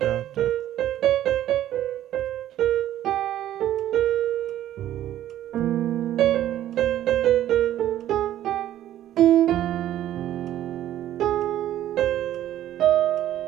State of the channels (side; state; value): left; quieter; 12.5 dB